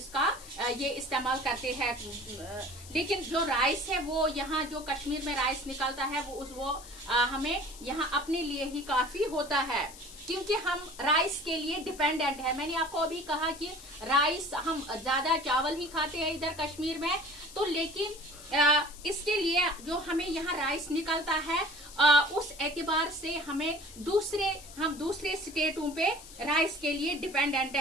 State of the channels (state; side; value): noise; left; hiss, 17 dB below the sound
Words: ये इस्तेमाल करते हैं। लेकिन जो राइस है वो यहाँ जो कश्मीर में राइस निकलता है वो हमें यहाँ अपने लिए ही काफी होता है, क्योंकि हम राइस के लिए डिपेंडेंट है। मैंने आपको अभी कहा कि राइस हम ज्यादा चावल ही खाते हैं इधर कश्मीर में, तो लेकिन इसके लिए जो हमें यहाँ राइस निकलता है उस एतबार से हम दूसरे स्टेटों पे राइस के लिए डिपेंडेंट